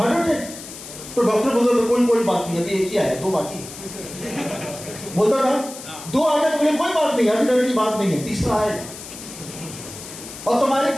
attack, तो डॉक्टर बोलता था कोई बात नहीं, अभी एक ही आया, 2 बाकी। बोलता था 2 आ गए तो बोले कोई बात नहीं, अभी डर की बात नहीं है, तीसरा आएगा। और तुम्हारी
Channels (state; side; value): noise; left; hiss, 13 dB below the sound